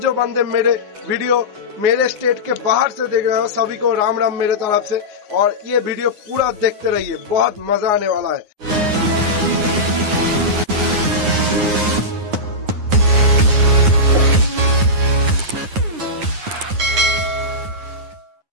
जो बंदे मेरे वीडियो मेरे स्टेट के बाहर से देख रहे हो, सभी को राम राम मेरे तरफ से। और ये वीडियो पूरा देखते रहिए, बहुत मजा आने वाला है।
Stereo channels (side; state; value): left; late; 9.6 ms